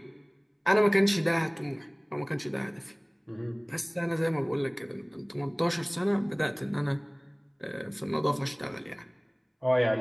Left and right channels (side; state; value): both; identical; correlation 1.00